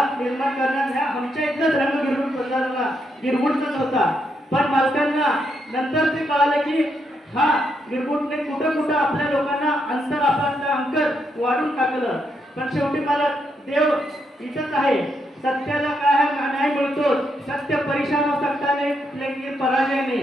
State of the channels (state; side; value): normal; both; correlation 0.79